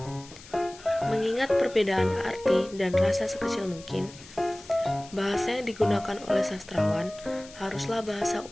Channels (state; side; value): noise; left; hiss, 19 dB below the sound